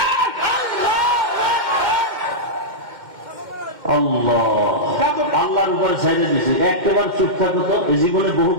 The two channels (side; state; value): left; late; 2.1 ms